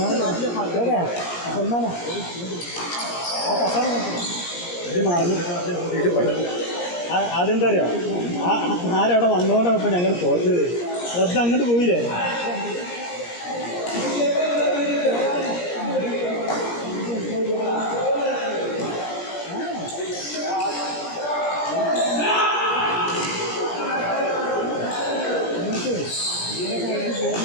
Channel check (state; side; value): late; right; 17 ms